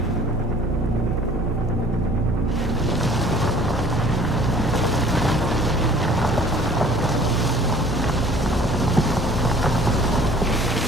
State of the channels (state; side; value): normal; both; correlation 0.52